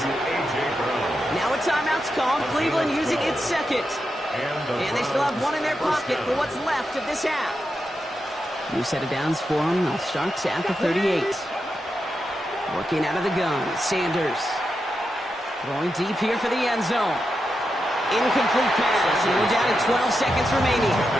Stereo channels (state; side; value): normal; both; correlation 0.87